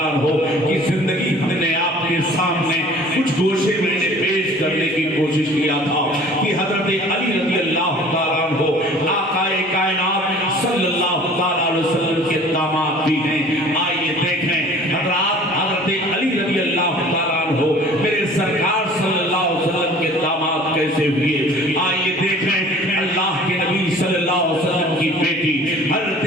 عنہ کی زندگی ہم نے آپ کے سامنے کچھ گوشے میں نے پیش کرنے کی کوشش کیا تھا کہ حضرت علی رضی اللہ تعالیٰ عنہ آقا کائنات صلی اللہ تعالیٰ علیہ وسلم کے داماد بھی ہیں. آئیے دیکھیں حضرت علی رضی اللہ تعالیٰ عنہ میرے سرکار صلی اللہ علیہ وسلم کے داماد کیسے ہوئے. آئیے دیکھیں اللہ کے نبی صلی اللہ علیہ وسلم کی بیٹی حضرت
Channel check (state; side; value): normal; both; correlation 0.48